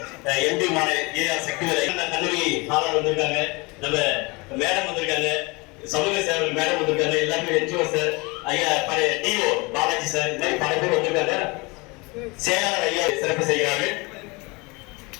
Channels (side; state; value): right; quieter; 26.4 dB